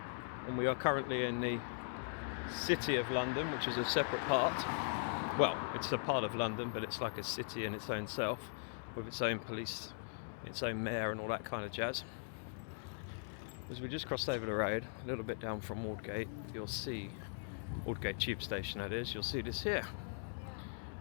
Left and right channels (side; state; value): right; silent; digital silence